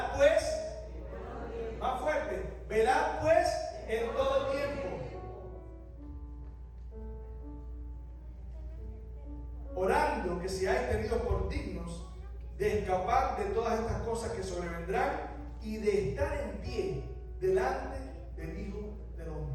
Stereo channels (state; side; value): identical; both; correlation 1.00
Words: pues, más fuerte, velad pues en todo tiempo, orando que seáis tenidos por dignos de escapar de todas estas cosas que sobrevendrán y de estar en pie delante del Hijo del